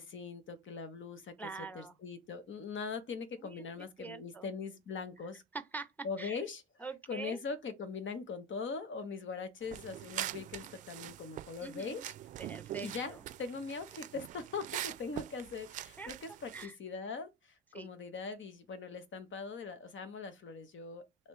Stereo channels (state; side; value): normal; both; correlation 0.18